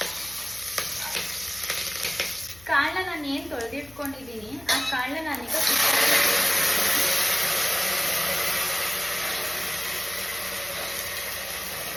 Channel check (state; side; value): noise; left; hum, 23 dB below the sound